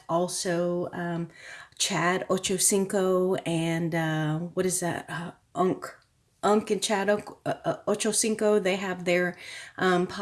Also, Chad Ochocinco and what is that? Unk and Chad Ochocinco, they have their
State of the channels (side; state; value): both; identical; correlation 1.00